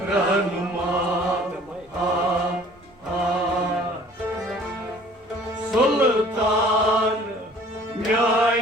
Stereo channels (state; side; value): normal; both; correlation 0.52